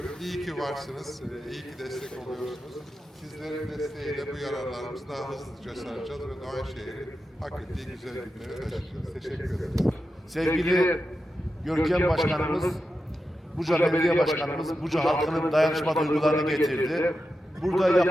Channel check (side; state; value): both; normal; correlation 0.90